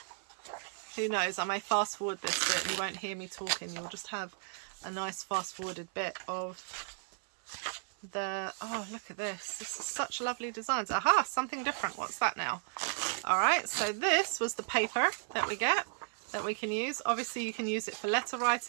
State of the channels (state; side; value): silent; left; 55 dB below the other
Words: Who knows, I may fast forward this bit and you won't hear me talking. You'll just have a nice fast forwarded bit of the, oh, look at this. This is such lovely designs. Aha, something different. What's that now? All right, so this was the paper that we get, that we can use. Obviously you can use it for letter